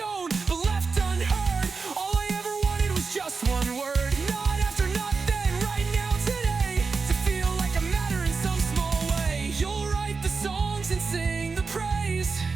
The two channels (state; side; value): quieter; left; 4.7 dB